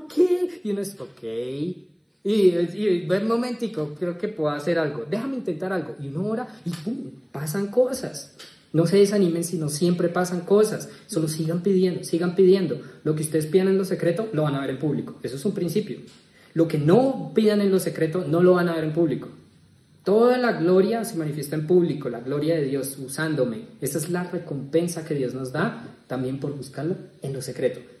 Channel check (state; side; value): identical; both; correlation 1.00